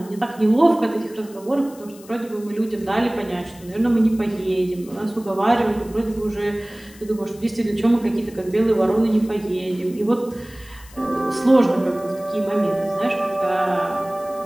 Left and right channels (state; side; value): noise; left; hiss, 22 dB below the sound